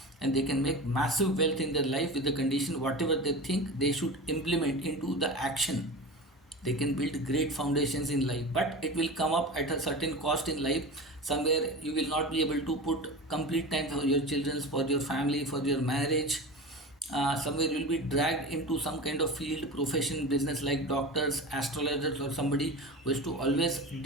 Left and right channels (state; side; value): normal; both; correlation 0.30